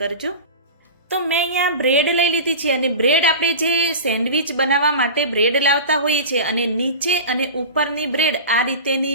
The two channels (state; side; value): inverted; both; correlation -0.31